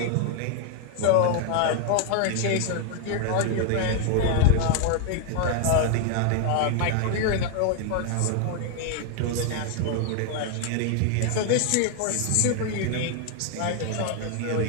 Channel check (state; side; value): different; both; correlation 0.00